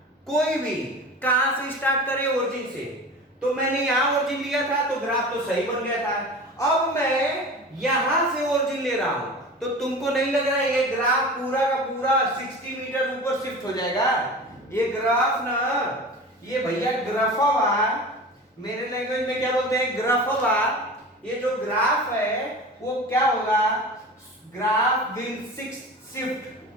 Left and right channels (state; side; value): normal; both; correlation 0.35